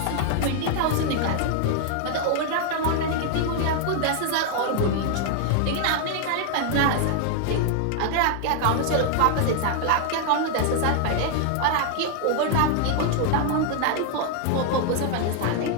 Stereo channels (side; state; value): both; different; correlation 0.00